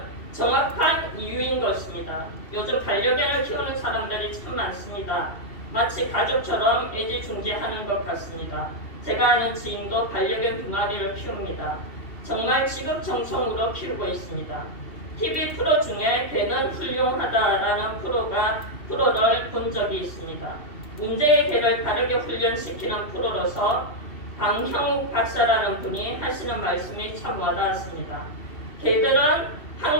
정확한 이유인 것입니다. 요즘 반려견을 키우는 사람들이 참 많습니다. 마치 가족처럼 애지중지하는 것 같습니다. 제가 아는 지인도 반려견 2마리를 키웁니다. 정말 지극정성으로 키우고 있습니다. TV 프로 중에 개는 훌륭하다라는 프로를 본 적이 있습니다. 문제의 개를 바르게 훈련시키는 프로로서 강형욱 박사라는 분이 하시는 말씀이 참 와닿았습니다. 개들은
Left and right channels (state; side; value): late; right; 2.8 ms